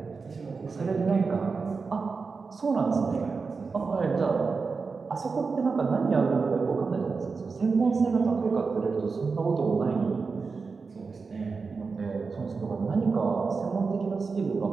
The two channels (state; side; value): quieter; left; 4.7 dB